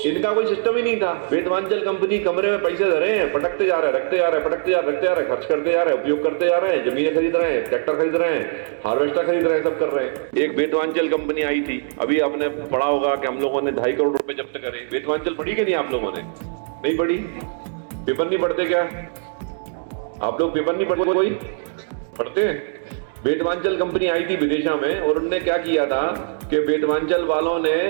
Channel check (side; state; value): left; silent; digital silence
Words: इनका कोई सिस्टम ही नहीं था। वेदवांचल कंपनी कमरे में पैसे धरे हैं, पटकते जा रहे हैं, रखते जा रहे हैं, पटकते जा रहे हैं, खर्च करते जा रहे हैं, उपयोग करते जा रहे हैं, जमीनें खरीद रहे हैं, ट्रैक्टर खरीद रहे हैं, हार्वेस्टर खरीद रहे हैं, सब कर रहे हैं। एक वेदवांचल कंपनी आई थी, अभी आपने पढ़ा होगा कि हम लोगों ने 2.5 करोड़ रुपए जब्त करे। वेदवांचल पढ़ी कि नहीं आप लोगों ने? नहीं पढ़ी? पेपर नहीं पढ़ते क्या आप लोग? पेपर नहीं पढ़ते? कोई पढ़ते हैं? वेदवांचल कंपनी आई थी विदेशा में और उन्होंने क्या किया था कि वेदवांचल वालों ने